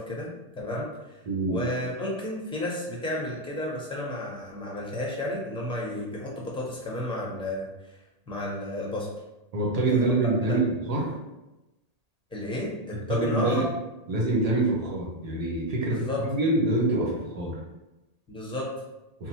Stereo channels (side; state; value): left; late; 1.8 ms